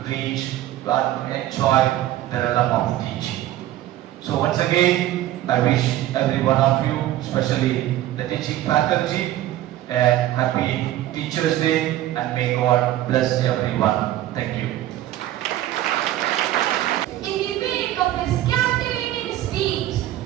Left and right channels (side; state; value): left; quieter; 13.9 dB